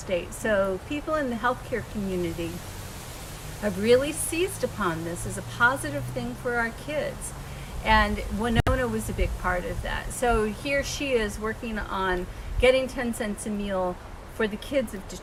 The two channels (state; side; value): identical; both; correlation 1.00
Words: So people in the healthcare community have really seized upon this as a positive thing for our kids. And Winona was a big part of that. So here she is working on getting 10 cents a meal for the kids of